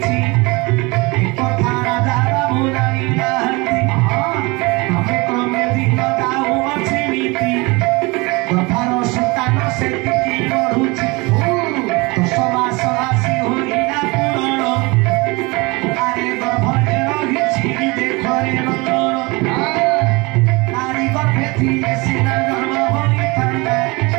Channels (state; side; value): quieter; left; 25.4 dB